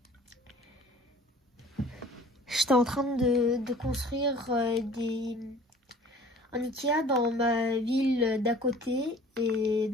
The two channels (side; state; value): both; normal; correlation 0.48